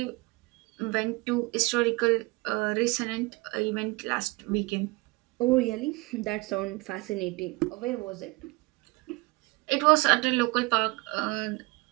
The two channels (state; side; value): quieter; left; 24.7 dB